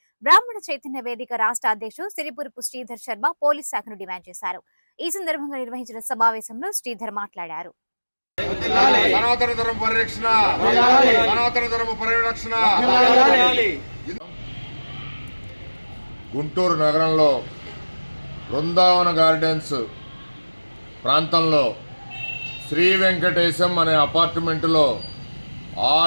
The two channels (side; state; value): both; inverted; correlation -1.00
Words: బ్రాహ్మణ చైతన్య వేదిక రాష్ట్ర అధ్యక్షుడు సిరిపురపు శ్రీధర్ శర్మ పోలీస్ శాఖను డిమాండ్ చేశారు. ఈ సందర్భంగా నిర్వహించిన సమావేశంలో శ్రీధర్ మాట్లాడారు. గుంటూరు నగరంలో బృందావన గార్డెన్స్ ప్రాంతంలో శ్రీ వెంకటేశం అనే అపార్ట్మెంటులో